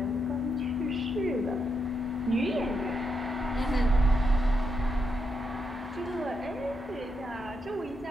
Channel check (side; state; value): both; normal; correlation 0.82